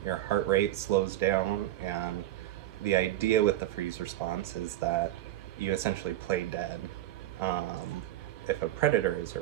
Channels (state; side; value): quieter; left; 14.4 dB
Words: your heart rate slows down, and the idea with the freeze response is that you essentially play dead if a predator is